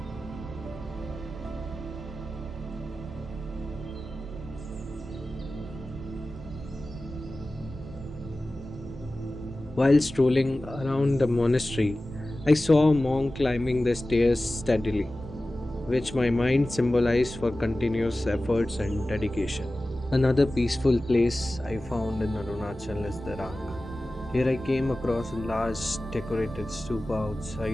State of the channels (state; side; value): normal; both; correlation 0.96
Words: While strolling around the monastery, I saw a monk climbing the stairs steadily, which my mind symbolized for continuous efforts and dedication. Another peaceful place I found in Arunachal is Dirang. Here I came across a large decorated stupa